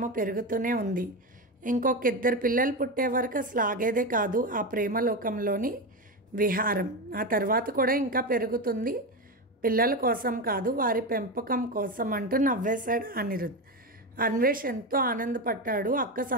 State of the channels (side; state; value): both; normal; correlation 0.16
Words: పెరుగుతూనే ఉంది. ఇంకొక ఇద్దరు పిల్లలు పుట్టే వరకు అసలు ఆగేదే కాదు ఆ ప్రేమలోకంలోని విహారం. ఆ తర్వాత కూడా ఇంకా పెరుగుతుంది. పిల్లల కోసం కాదు, వారి పెంపకం కోసం అంటూ నవ్వేశాడు అనిరుద్. అన్వేష్ ఎంతో ఆనందపడ్డాడు అక్క